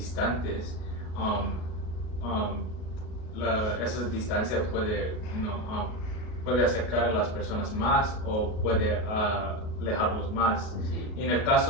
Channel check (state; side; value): late; right; 37 ms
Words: esa distancia puede acercar a las personas más o puede alejarlos más. Sí. Y en el